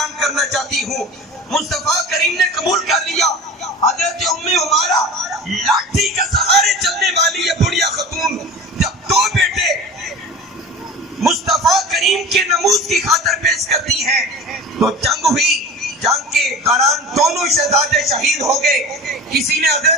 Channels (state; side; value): normal; both; correlation 0.35